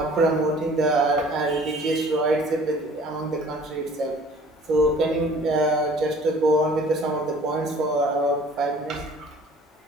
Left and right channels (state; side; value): normal; both; correlation 0.51